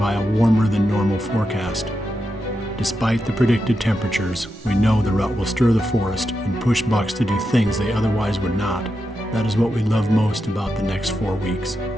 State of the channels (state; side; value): normal; both; correlation 0.87